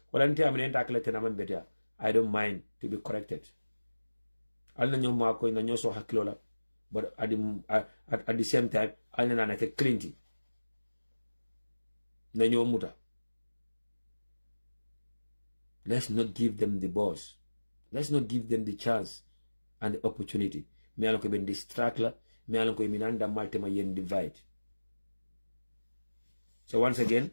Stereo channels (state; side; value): inverted; both; correlation -1.00